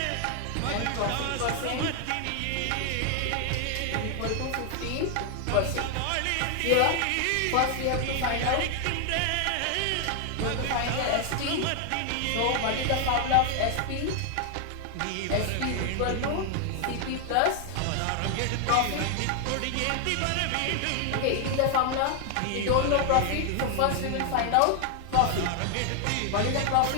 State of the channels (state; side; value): different; both; correlation 0.00